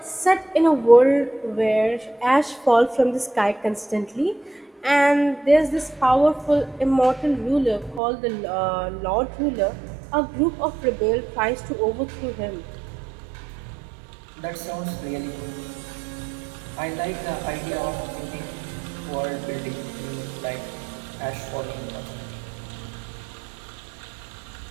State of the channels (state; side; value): drops out; left; at 8.0 s